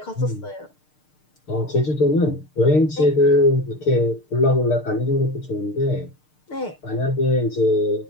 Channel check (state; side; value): late; right; 6.6 ms